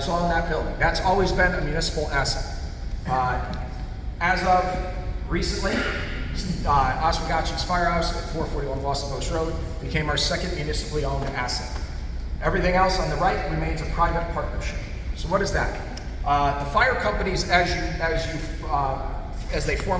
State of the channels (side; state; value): both; identical; correlation 1.00